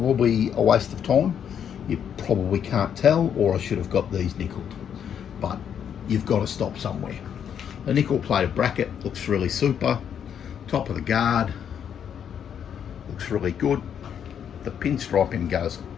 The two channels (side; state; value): right; quieter; 8.5 dB